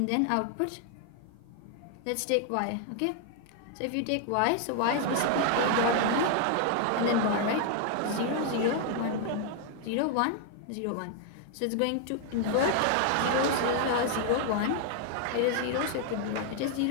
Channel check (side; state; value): both; different; correlation 0.00